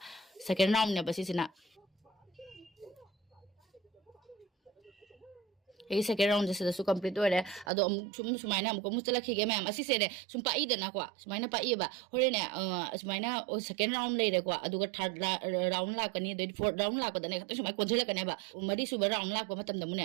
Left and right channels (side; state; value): left; drops out; at 7.7 s